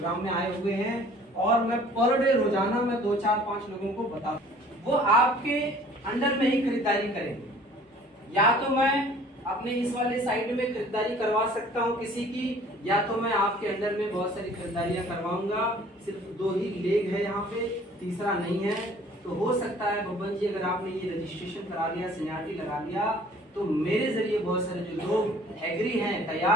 में आए हुए हैं और मैं पर डे रोजाना मैं 2 4 5 लोगों को बता, वो आपके अंडर में ही खरीदारी करेंगे। या तो मैं अपने इस वाले साइड में खरीदारी करवा सकता हूँ किसी की, या तो मैं आपके अंडर में बहुत सारी खरीदारियां करवाऊंगा। सिर्फ 2 ही लेग है यहाँ पे, तीसरा नहीं है। तो हो सकता है बब्बन जी अगर आपने ये रजिस्ट्रेशन करा लिया, सीनियरिटी लगा लिया, तो मेरे जरिए बहुत सारे जो लोग एग्री हैं,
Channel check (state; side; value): normal; both; correlation 0.52